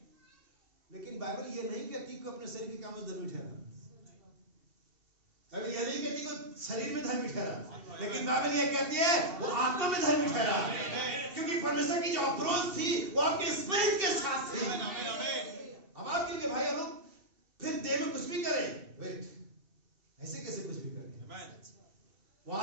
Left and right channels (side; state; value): left; late; 2.7 ms